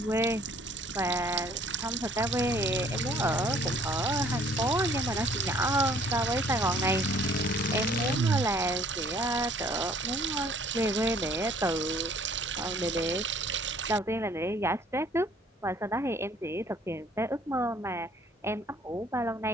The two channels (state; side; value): normal; both; correlation 0.58